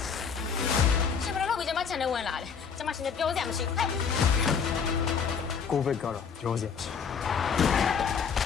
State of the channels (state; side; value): quieter; right; 6.4 dB